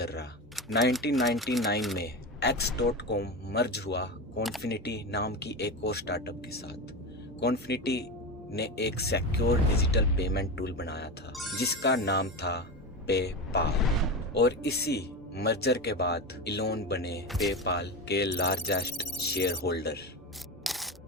रहा। 1999 में X.com मर्ज हुआ कॉन्फिनिटी नाम की एक और स्टार्टअप के साथ। कॉन्फिनिटी ने एक सिक्योर डिजिटल पेमेंट टूल बनाया था जिसका नाम था पेपाल। और इसी मर्जर के बाद इलोन बने पेपाल के लार्जेस्ट शेयर होल्डर।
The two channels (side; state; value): both; normal; correlation 0.21